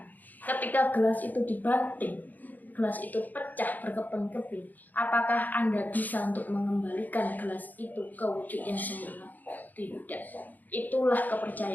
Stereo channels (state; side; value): late; right; 0.083 ms